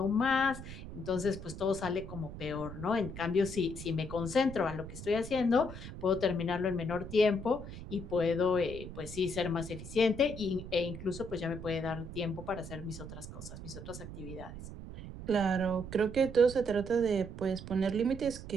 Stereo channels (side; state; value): right; noise; rumble, 11 dB below the sound